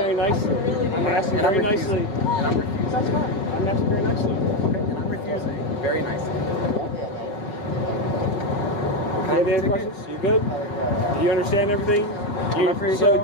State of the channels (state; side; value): late; right; 5.1 ms